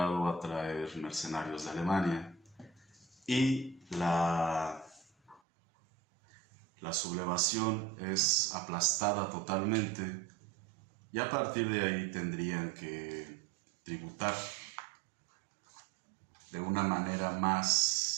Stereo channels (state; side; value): drops out; left; at 5.4 s